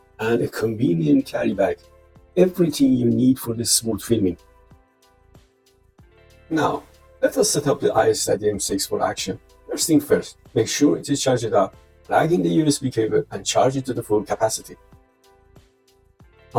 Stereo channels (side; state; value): both; identical; correlation 1.00